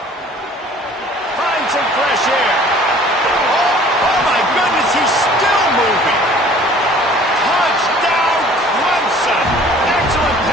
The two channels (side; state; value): both; normal; correlation 0.51